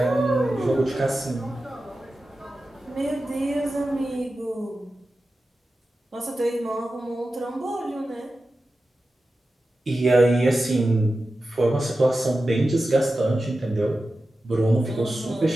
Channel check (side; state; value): both; normal; correlation 0.93